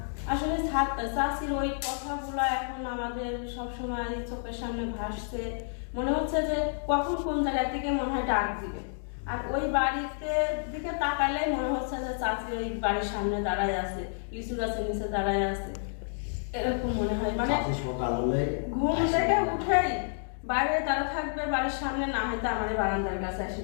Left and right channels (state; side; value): silent; right; digital silence